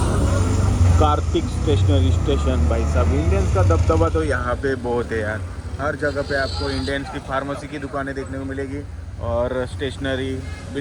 Kartik stationery station. भाई साहब, इंडियंस का दबदबा तो यहाँ पे बहुत है यार। हर जगह पे आपको इंडियंस की फार्मेसी की दुकानें देखने को मिलेगी और स्टेशनरी,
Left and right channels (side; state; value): both; identical; correlation 1.00